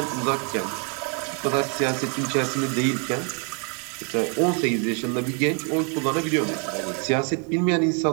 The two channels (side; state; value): left; quieter; 36.4 dB